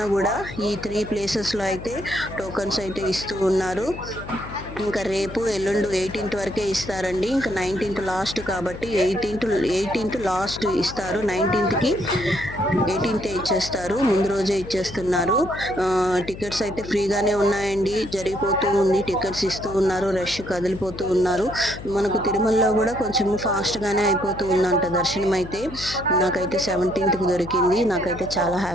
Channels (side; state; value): left; noise; hum, 12 dB below the sound